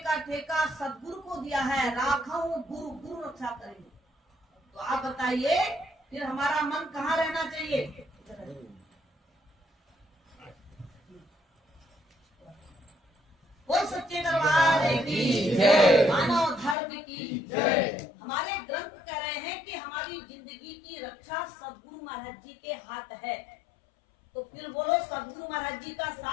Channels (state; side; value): drops out; right; at 16.8 s